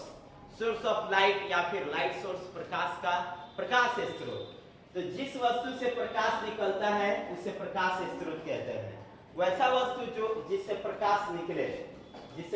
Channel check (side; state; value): both; identical; correlation 1.00